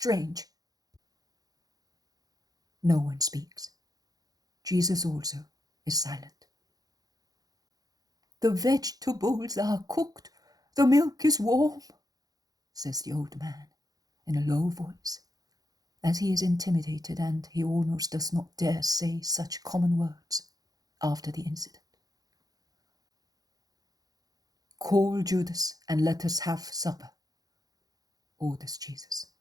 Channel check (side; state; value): left; late; 0.18 ms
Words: No one speaks. Jesus also is silent. "The vegetables are cooked, the milk is warm," says the old man in a low voice, as he is intimidated and he almost does not dare say such common words after the incident. "Call Judas and let us have supper," orders Jesus.